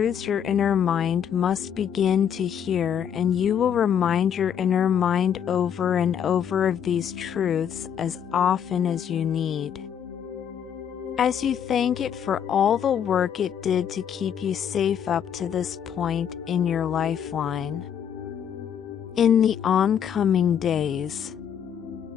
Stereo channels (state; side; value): quieter; right; 8.5 dB